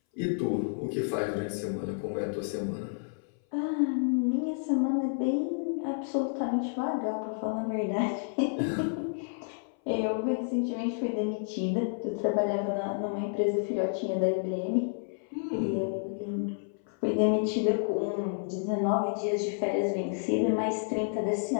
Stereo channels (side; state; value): right; silent; 58 dB below the other